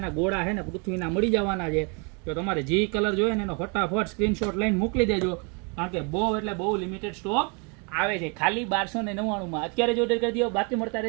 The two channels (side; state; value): left; quieter; 34.3 dB